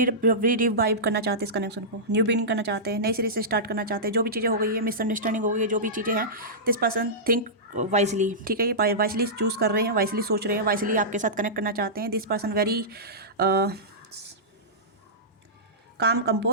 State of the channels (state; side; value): normal; both; correlation -0.16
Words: करना चाहते हैं इस कनेक्शन को, न्यू बिगिनिंग करना चाहते हैं, नई सिरे से स्टार्ट करना चाहते हैं। जो भी चीज़ें हो गई है, मिसअंडरस्टैंडिंग हो गई है, जो भी चीज़ें हैं, दिस पर्सन थिंक वाइजली। ठीक है, ये वाइजली चूज़ कर रहे हैं, वाइजली सोच रहे हैं, वाइजली आपके साथ कनेक्ट करना चाहते हैं। This person very calm